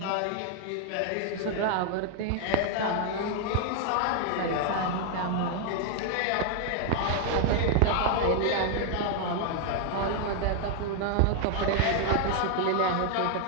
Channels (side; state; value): both; different; correlation 0.00